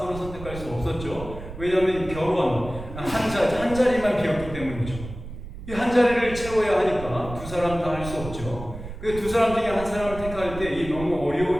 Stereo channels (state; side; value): noise; right; rumble, 11 dB below the sound